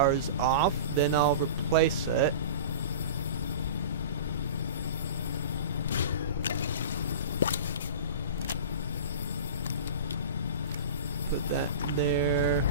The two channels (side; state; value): both; inverted; correlation -0.34